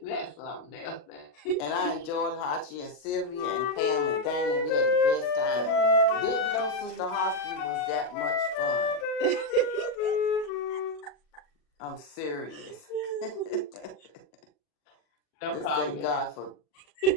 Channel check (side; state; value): right; late; 40 ms